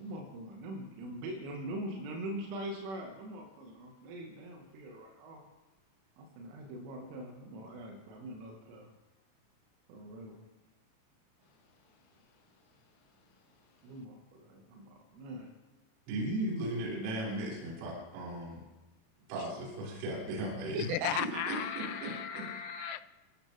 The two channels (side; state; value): left; late; 36 ms